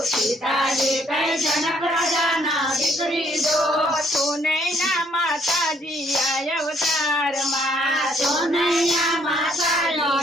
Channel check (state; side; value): normal; both; correlation 0.67